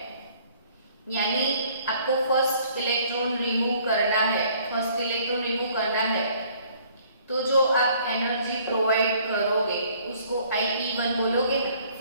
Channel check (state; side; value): inverted; both; correlation -0.59